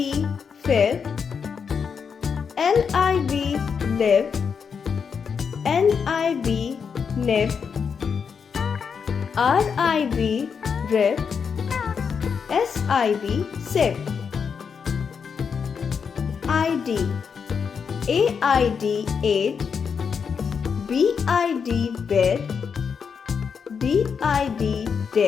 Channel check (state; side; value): quieter; right; 6.3 dB